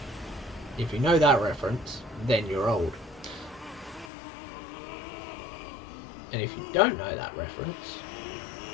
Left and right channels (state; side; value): drops out; right; at 4.1 s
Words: If you know that reference, then you're old. And if you don't know that reference,